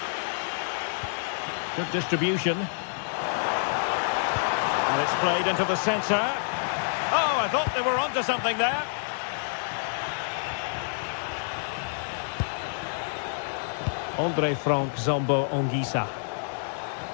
Good distribution. And it's played into the centre. Oh, I thought they were onto something there. Andre Frank Zombo Onguisa.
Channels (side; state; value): right; silent; digital silence